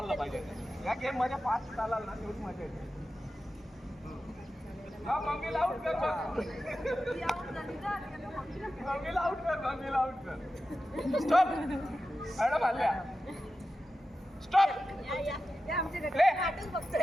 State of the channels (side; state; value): both; normal; correlation 0.92